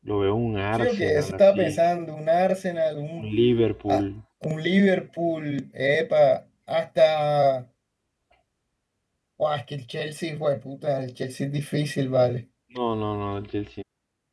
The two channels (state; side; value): identical; both; correlation 1.00